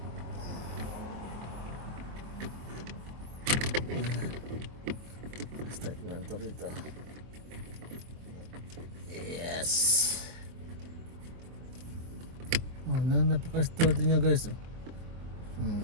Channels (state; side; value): late; left; 24 ms